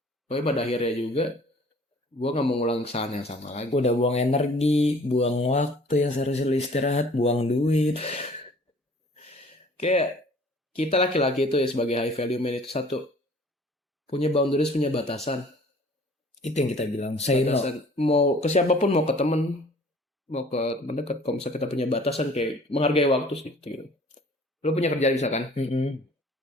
Tapi pada akhirnya juga gue gak mau ngulang kesalahan yang sama lagi. Udah buang energi, buang waktu yang seharusnya lu istirahat, buang duit. Kayak kita laki-laki itu ya sebagai high value man itu satu, punya boundaries, punya batasan. Itu yang kita bilang, say no. Mau ke siapapun, mau ke temen, mau ke teman dekat, kalau misalnya kita punya batasan kayak menghargai waktu sih gitu. Lu punya kerjaan bisa kan?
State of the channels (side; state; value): both; normal; correlation 0.52